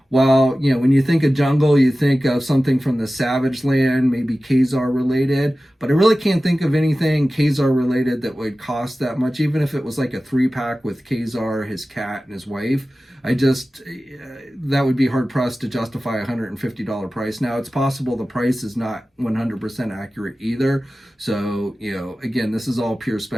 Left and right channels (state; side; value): normal; both; correlation 0.96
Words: well, when you think of jungle, you think of something from the Savage Land, maybe Khazar related, but I really can't think of anything Khazar related that would cost that much, even if it was like a 3-pack with Khazar, his cat, and his wife. That would be hard pressed to justify a $150 price. Now, it's possible the price is not 100% accurate either. So, again, this is all pure